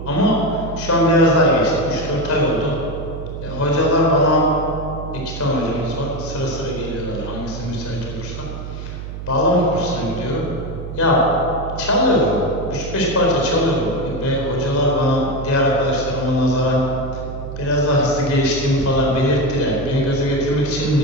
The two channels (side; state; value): right; noise; hum, 9 dB below the sound